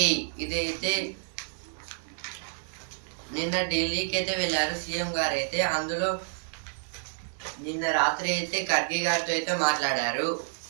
ఇదైతే నిన్న ఢిల్లీకి అయితే వెళ్ళారు సీఎం గారు అయితే. అందులో నిన్న రాత్రి అయితే ఖర్గే గారితో అయితే మాట్లాడారు.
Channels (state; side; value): silent; left; digital silence